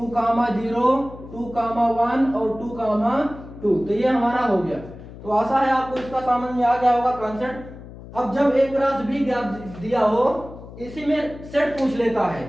0 2, 1 और 2, 2। तो ये हमारा हो गया। तो आशा है आपको इसका समझ में आ गया होगा कॉन्सेप्ट। अब जब एक क्रॉस भी ज्ञात दिया हो, इसी में सेट पूछ लेता है,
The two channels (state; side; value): noise; left; hum, 15 dB below the sound